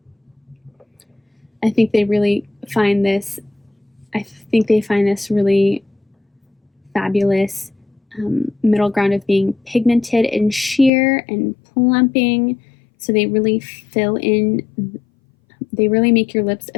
I think they really find this, really fabulous middle ground of being pigmented and sheer and plumping. So they really fill in, they really make your lips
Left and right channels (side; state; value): right; drops out; at 10.9 s